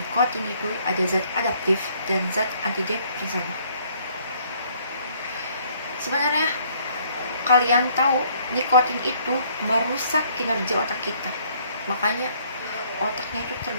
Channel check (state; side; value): inverted; both; correlation -0.63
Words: itu ada zat adaptif dan zat antidepresan. Sebenarnya kalian tahu nikotin itu merusak kinerja otak kita, makanya otaknya itu